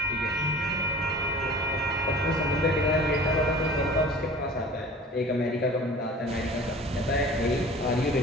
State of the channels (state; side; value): normal; both; correlation 0.42